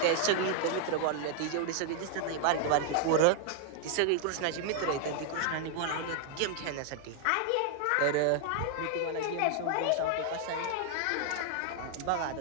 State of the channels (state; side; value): different; both; correlation 0.00